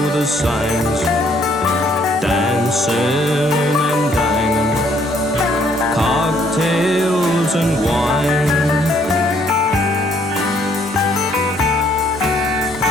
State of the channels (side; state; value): both; normal; correlation 0.66